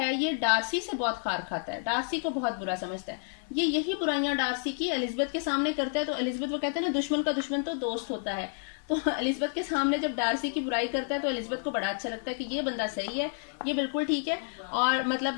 ये डार्सी से बहुत खार खाता है, डार्सी को बहुत बुरा समझता है। ये यही बुराइयां डार्सी की एलिजाबेथ के सामने करता है, तो एलिजाबेथ वो कहते हैं ना दुश्मन का दुश्मन तो दोस्त होता है। तो एलिजाबेथ के सामने जब डार्सी की बुराई करता है तो एलिजाबेथ को बड़ा अच्छा लगता है कि ये बंदा सही है, ये बिल्कुल ठीक है, और मतलब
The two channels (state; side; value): silent; right; 58 dB below the other